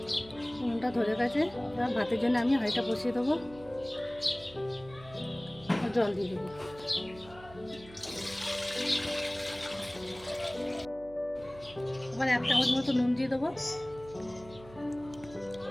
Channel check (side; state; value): right; noise; hum, 20 dB below the sound